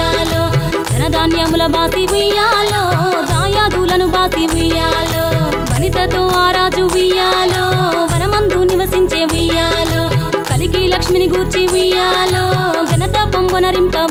ధనధాన్యముల బాసి ఉయ్యాలో దాయాదులను బాసి ఉయ్యాలో వనితతో ఆ రాజు ఉయ్యాలో వనమందు నివసించే ఉయ్యాలో కలికి లక్ష్మిని గూర్చి ఉయ్యాలో ఘనత పొంగునరింప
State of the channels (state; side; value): identical; both; correlation 1.00